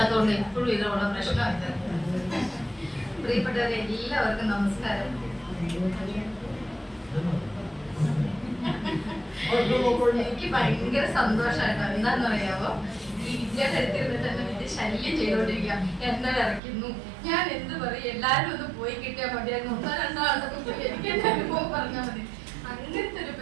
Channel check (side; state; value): left; drops out; at 16.6 s